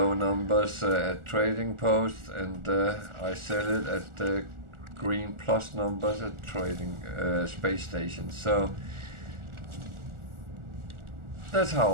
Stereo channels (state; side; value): late; left; 1.4 ms